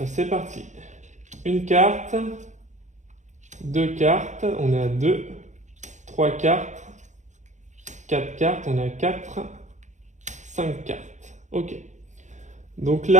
C'est parti. Une carte. 2 cartes. On est à 2. 3 cartes. 4 cartes. On est à 4. 5 cartes. Ok. Donc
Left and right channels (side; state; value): left; late; 0.35 ms